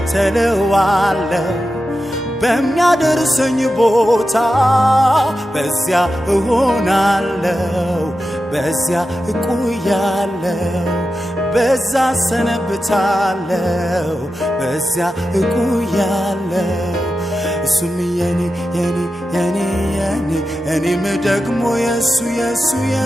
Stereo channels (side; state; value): both; normal; correlation 0.91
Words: በሚያደርሰኝ ቦታ በዚያ እሆናለሁ በዚያ እቆያለሁ በዛ ሰነብታለሁ በዚያ እቆያለሁ እሱም የኔ እኔም ደግሞ የሱ